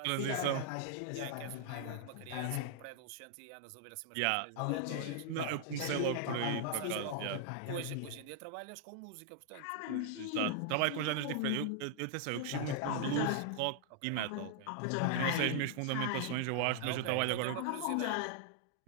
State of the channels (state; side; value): different; both; correlation -0.01